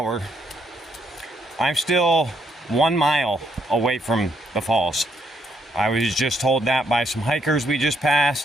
I'm still 1 mile away from the falls. I was just told that by some hikers we just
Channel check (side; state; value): both; normal; correlation 0.74